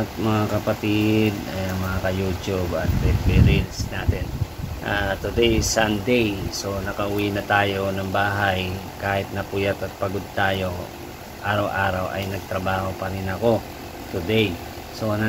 mga kapatid, mga ka-YouTube at reels natin. Today is Sunday, so nakauwi na tayo ng bahay. Kahit napuyat at pagod tayo, araw-araw ay nagtrabaho pa rin ako today. So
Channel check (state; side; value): identical; both; correlation 1.00